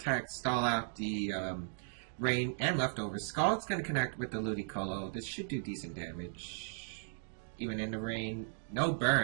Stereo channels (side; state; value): left; silent; digital silence